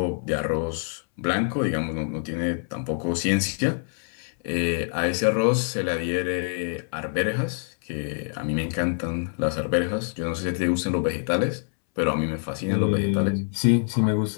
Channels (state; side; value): silent; right; 61 dB below the other